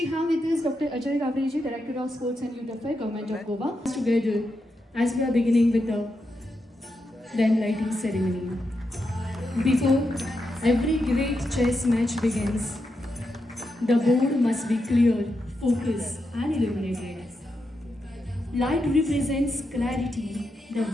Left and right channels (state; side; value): normal; both; correlation 0.85